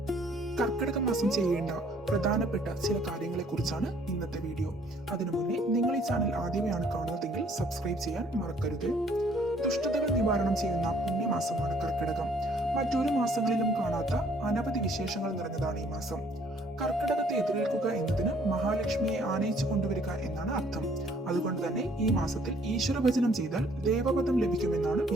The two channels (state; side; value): normal; both; correlation 0.61